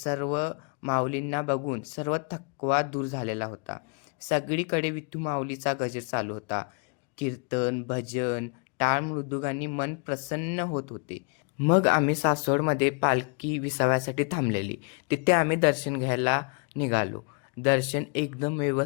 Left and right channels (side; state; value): right; quieter; 35.5 dB